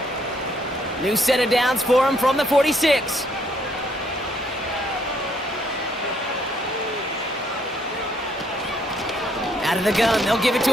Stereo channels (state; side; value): normal; both; correlation 0.68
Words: New set of downs for him from the 46. Out of the gun, they'll give it